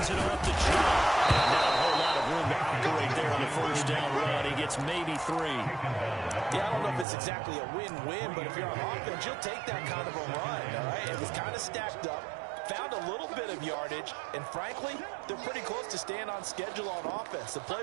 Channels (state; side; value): drops out; left; at 7.1 s